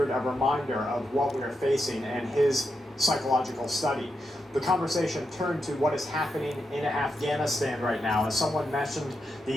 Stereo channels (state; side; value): normal; both; correlation 0.85